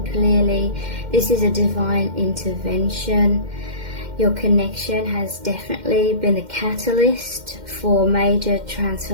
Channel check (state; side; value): late; left; 2.1 ms